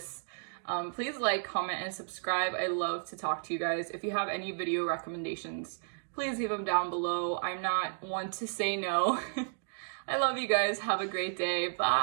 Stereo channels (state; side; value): silent; left; digital silence